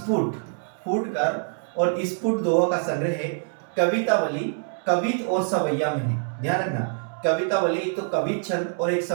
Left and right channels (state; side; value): silent; left; 58 dB below the other